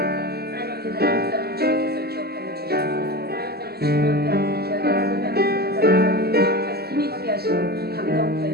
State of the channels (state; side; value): late; left; 0.46 ms